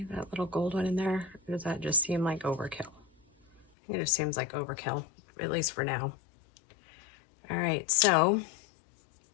that little gold one in there? Or does that just seem like overkill? It just seems like overkill, at least for now. All right, so,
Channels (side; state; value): right; drops out; at 3.7 s